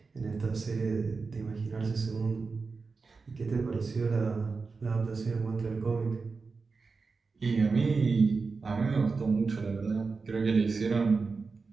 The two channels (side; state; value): left; quieter; 4.5 dB